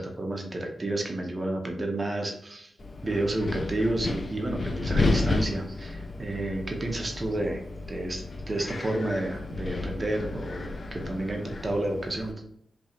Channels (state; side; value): normal; both; correlation 0.89